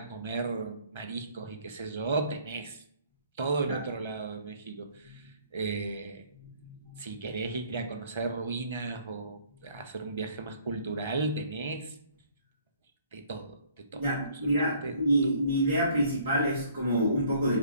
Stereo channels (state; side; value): inverted; both; correlation -0.58